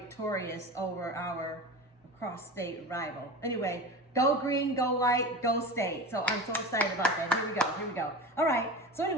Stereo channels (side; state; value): both; normal; correlation 0.29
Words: over our cross-state rival. Anyway, go green, go white, go state. So I'm so excited about that. Here we go. All right, so